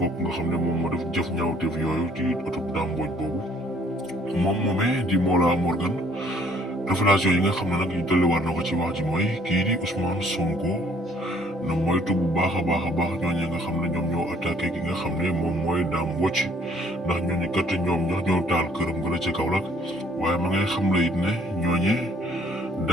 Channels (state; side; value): normal; both; correlation 0.61